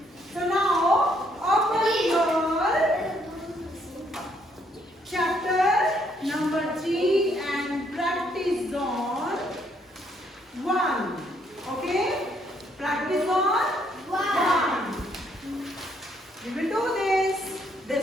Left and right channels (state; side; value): normal; both; correlation 0.69